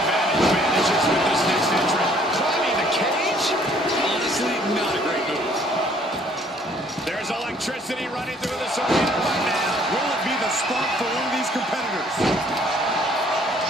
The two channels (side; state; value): both; normal; correlation 0.60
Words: advantage vanishes with this next entrant. Climbing the cage? Honestly, not a great move. There's electricity running through this arena right now. Will it be the spark for one of these competitors?